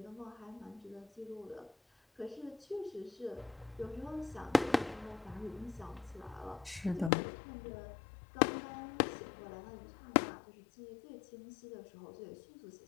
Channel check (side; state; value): right; drops out; at 7.1 s